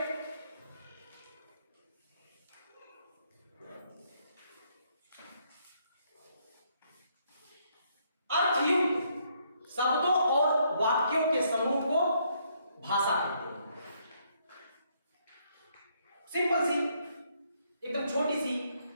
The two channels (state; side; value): inverted; both; correlation -0.72